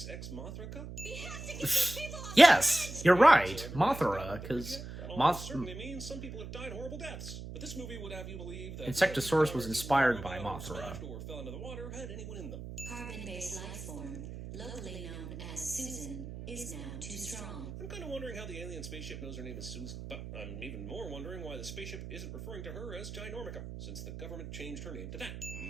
Ex Mothra? Yes, you're right. Mothra, because Moth... certainly means some people have died horrible deaths. But this movie would have you believe that Insectosaurus was inspired by Mothra. or fell into the water had anyone in them. Carbon-based life form, locally known as Susan, is now too strong. I'm kind of wondering how the alien spaceship knows her name is Susan, but I'm even more wondering why the spaceship isn't referring to her as Ginormica, since the government changed her name to that.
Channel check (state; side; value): noise; right; hum, 9 dB below the sound